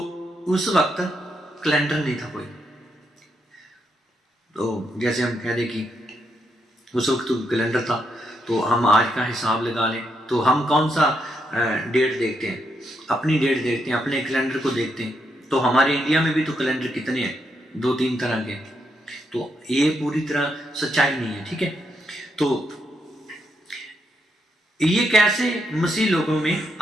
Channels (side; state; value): both; normal; correlation 0.80